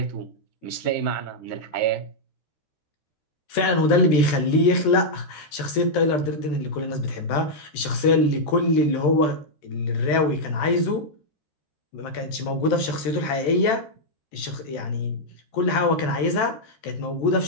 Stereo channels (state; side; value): late; right; 14 ms